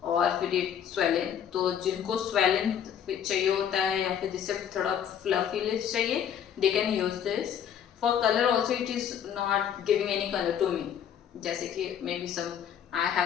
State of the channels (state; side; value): quieter; right; 8.9 dB